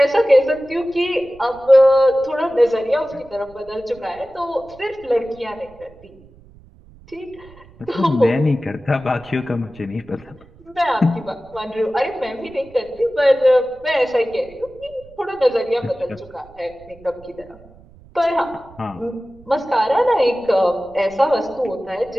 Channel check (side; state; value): right; noise; rumble, 24 dB below the sound